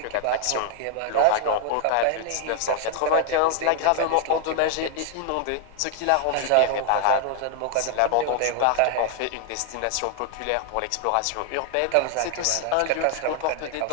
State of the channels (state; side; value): different; both; correlation 0.00